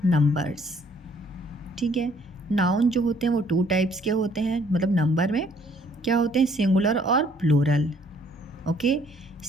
नंबर्स। ठीक है। नाउन जो होते हैं वो 2 टाइप्स के होते हैं, मतलब नंबर में क्या होते हैं, सिंगुलर और प्लूरल। ओके।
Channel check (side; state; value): both; normal; correlation 0.62